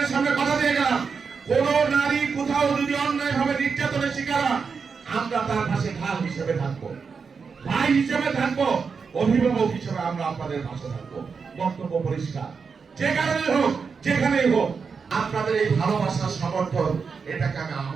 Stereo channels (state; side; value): quieter; left; 5.5 dB